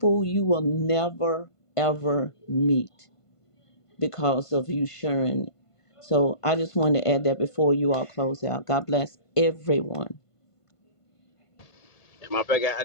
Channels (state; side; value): late; right; 1.5 ms